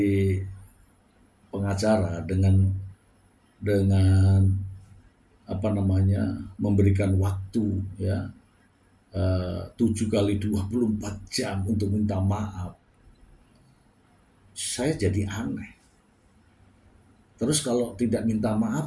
pengacara dengan memberikan waktu ya 7 kali 24 jam untuk minta maaf, saya jadi aneh. Terus kalau tidak minta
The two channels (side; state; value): both; identical; correlation 1.00